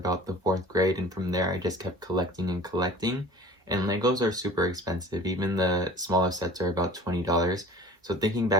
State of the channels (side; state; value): both; normal; correlation 0.44